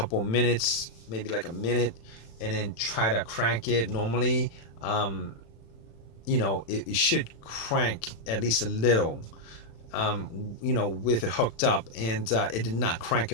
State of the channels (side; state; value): right; late; 35 ms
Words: minutes, maybe like a minute, and then try to crank it. Normally, it should crank at least a little, with it hooked up, and it did not crank